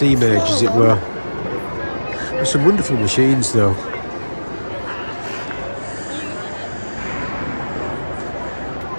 age, as it were. There's some wonderful machines though.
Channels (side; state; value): both; inverted; correlation -1.00